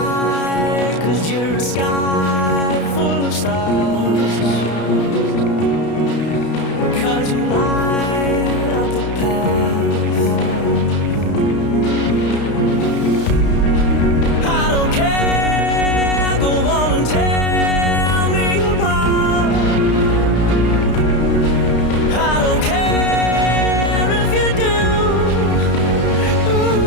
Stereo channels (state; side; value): late; right; 32 ms